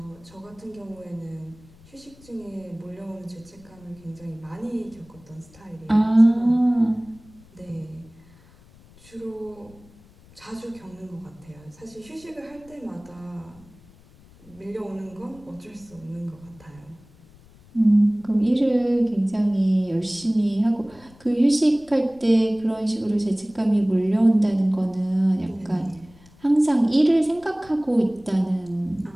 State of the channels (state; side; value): noise; left; rumble, 25 dB below the sound